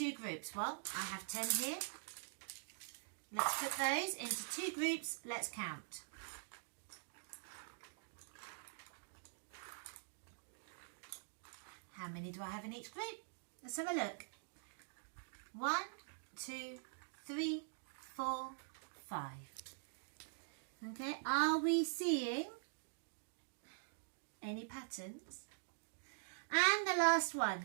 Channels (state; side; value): silent; left; digital silence